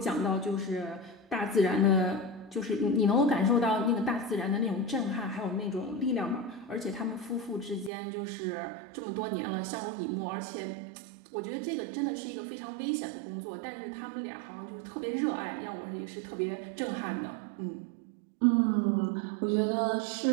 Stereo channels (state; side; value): drops out; left; at 7.9 s